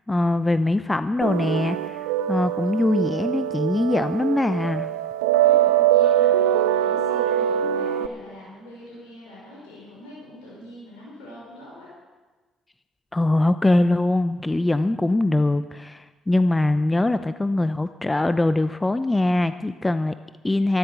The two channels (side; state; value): both; normal; correlation 0.56